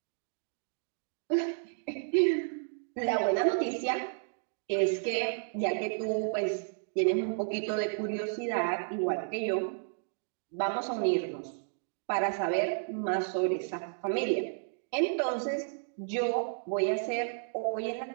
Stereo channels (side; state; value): left; silent; digital silence